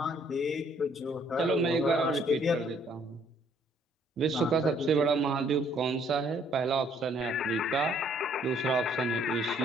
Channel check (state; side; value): normal; both; correlation 0.64